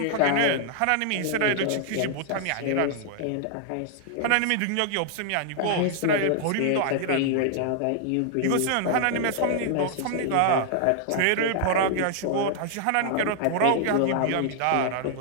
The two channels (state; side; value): different; both; correlation 0.00